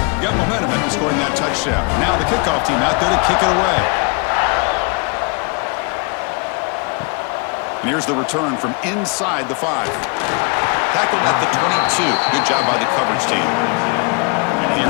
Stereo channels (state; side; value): quieter; right; 32.5 dB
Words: Got momentum after scoring that touchdown. Now the kickoff team out there to kick it away. And here's the return from inside the 5. Tackled at the 22. Good job by the coverage team. And